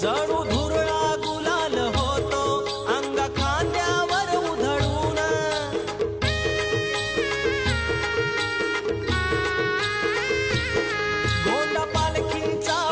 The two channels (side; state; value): both; identical; correlation 1.00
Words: जणू धुरळा गुलाल होतो अंगा खांद्यावर उधळून गोंडा पालखीचा